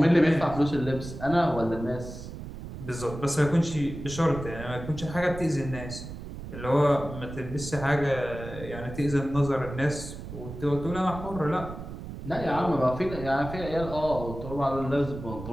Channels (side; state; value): right; noise; rumble, 10 dB below the sound